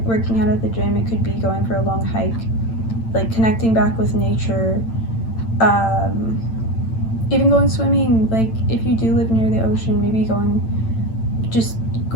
out at the gym. It could be going for a long hike, like connecting back with nature, even going swimming. Like if you do live near the ocean, maybe just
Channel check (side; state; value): right; late; 8.9 ms